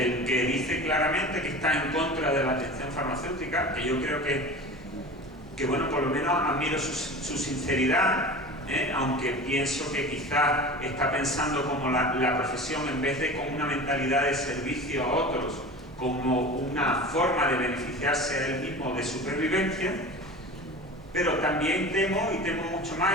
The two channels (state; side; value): normal; both; correlation 0.35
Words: el que dice claramente que está en contra de la atención farmacéutica, que yo creo que bueno, por lo menos admiro su sinceridad, aunque pienso que quizás está pensando como la profesión, en vez de con una mentalidad de servicio a otros, como una forma de beneficiarse a él mismo de supervivencia. Pero también temo, y temo mucho más,